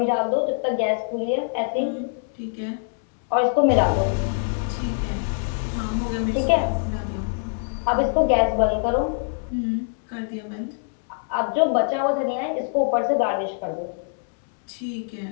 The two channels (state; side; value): silent; right; digital silence